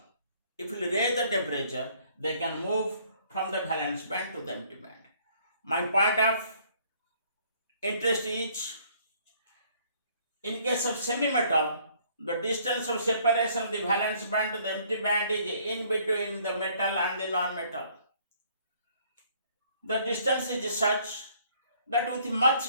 if we raise the temperature, they can move from the valence band to the empty band. My point of interest is, in case of semi-metal, the distance of separation of the valence band to the empty band is in between the metal and the non-metal. The distance is such that with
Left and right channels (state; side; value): inverted; both; correlation -0.62